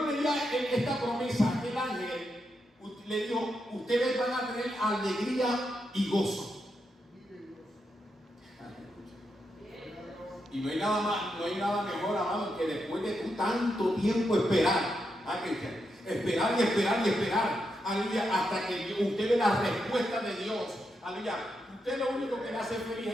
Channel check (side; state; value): both; normal; correlation 0.84